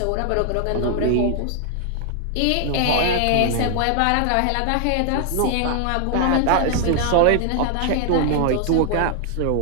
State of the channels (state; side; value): different; both; correlation 0.00